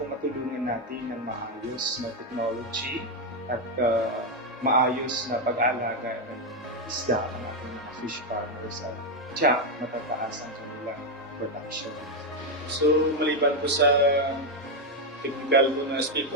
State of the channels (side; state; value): both; normal; correlation 0.04